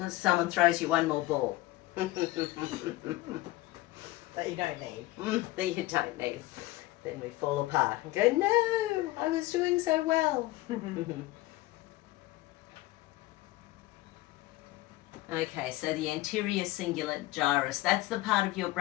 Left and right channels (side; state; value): right; quieter; 18.1 dB